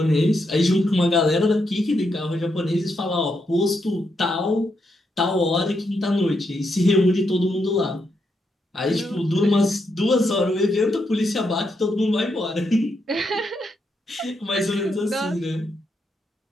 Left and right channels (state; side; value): normal; both; correlation 0.81